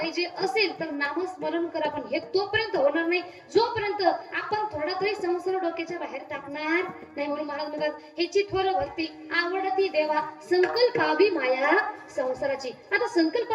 असेल तर नामस्मरण करा. पण हे तोपर्यंत होणार नाही जोपर्यंत आपण थोडा तरी संसार डोक्याच्या बाहेर टाकणार नाही. म्हणून महाराज म्हणतात, ह्याची थोर भक्ती आवडती देवा संकल्पावी माया संसाराची. आता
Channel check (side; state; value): both; identical; correlation 1.00